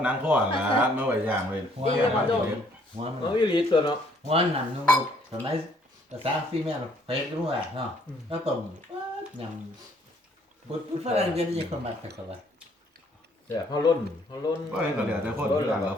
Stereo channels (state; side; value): normal; both; correlation 0.64